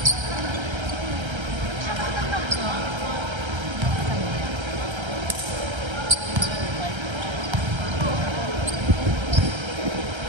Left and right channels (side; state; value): left; late; 1.3 ms